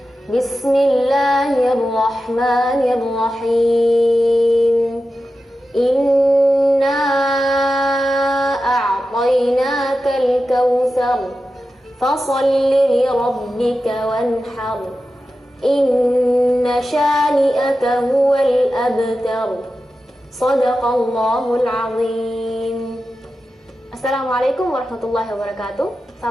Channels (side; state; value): both; normal; correlation 0.92